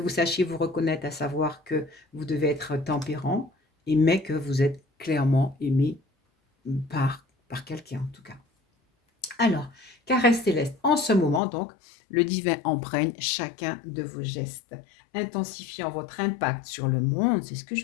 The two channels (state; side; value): drops out; right; at 11.4 s